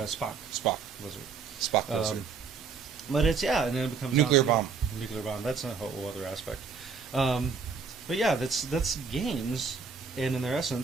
Spock, lizard. Spock, lizard. But it's and then it becomes Nuclear down to- bomb. Nuclear bomb. That's a whole other aspect. But yeah, that's games, and in their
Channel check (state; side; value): quieter; left; 5.4 dB